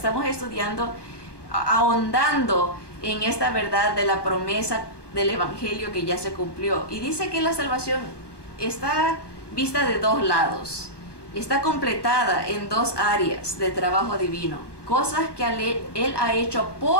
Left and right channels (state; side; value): late; right; 1.2 ms